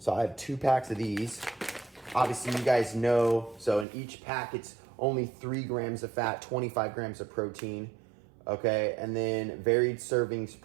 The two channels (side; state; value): left; drops out; at 3.9 s